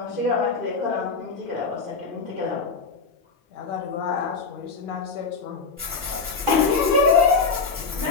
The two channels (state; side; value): quieter; right; 4.7 dB